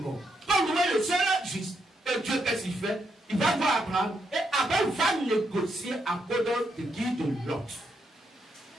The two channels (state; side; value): normal; both; correlation 0.79